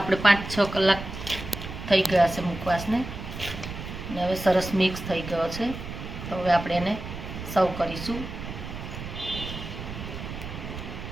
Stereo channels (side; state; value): right; noise; rumble, 9 dB below the sound